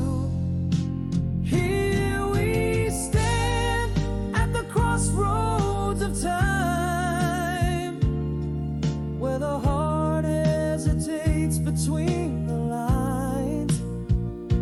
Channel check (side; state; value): both; identical; correlation 1.00